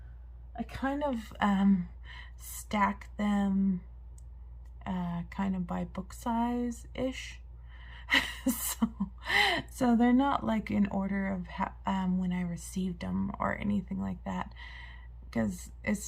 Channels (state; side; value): identical; both; correlation 1.00